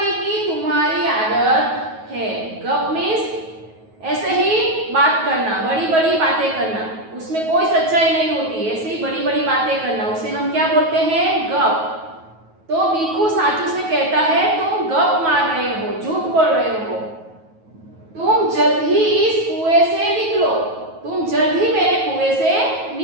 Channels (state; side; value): late; left; 9.3 ms